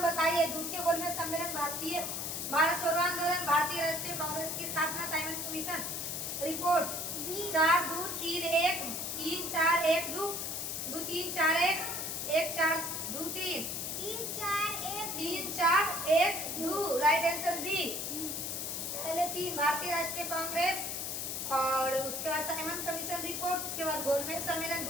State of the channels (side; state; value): left; noise; hiss, 3 dB below the sound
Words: बताइए? द्वितीय गोलमेज सम्मेलन, भारत छोड़ो आंदोलन, भारतीय राष्ट्रीय कांग्रेस की स्थापना, Simon Commission report, 4-2-3-1, 3-4-1-2, 2-3-4-1, 1-4-2-3, 3-4-1-2, right answer B. पहले 3 भारतीय राष्ट्रीय कांग्रेस और उसके बाद साइमन कमीशन रिपोर्ट, उसके बाद गोलमेज सम्मेलन